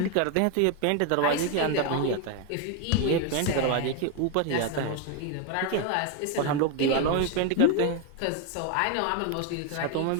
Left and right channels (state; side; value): different; both; correlation 0.01